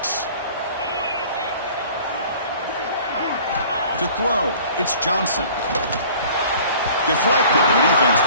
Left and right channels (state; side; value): inverted; both; correlation -0.48